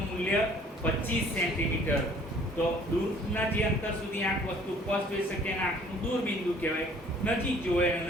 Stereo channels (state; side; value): normal; both; correlation 0.55